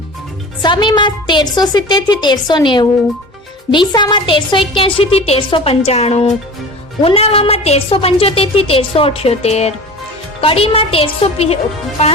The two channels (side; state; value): both; normal; correlation 0.37